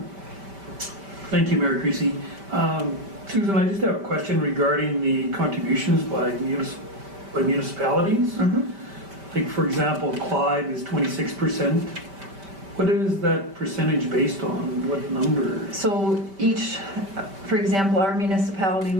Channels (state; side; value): late; left; 5.1 ms